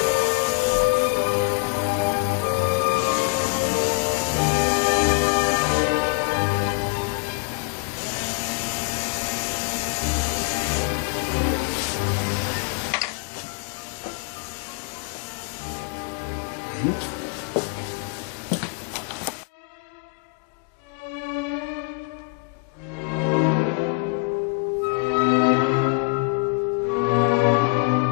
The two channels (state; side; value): quieter; right; 33.4 dB